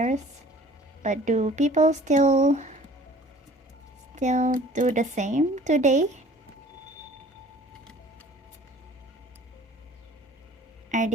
But do people still do the same today? Are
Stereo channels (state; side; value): normal; both; correlation 0.49